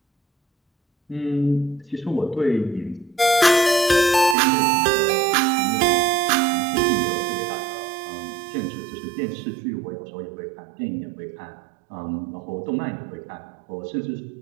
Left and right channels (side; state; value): left; drops out; at 4.4 s